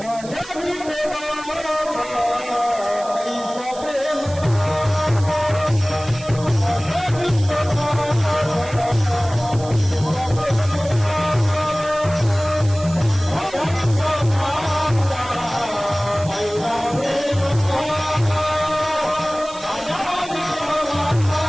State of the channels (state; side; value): noise; right; hiss, 17 dB below the sound